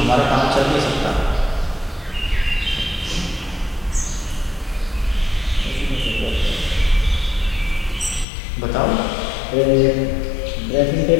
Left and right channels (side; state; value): right; drops out; at 8.2 s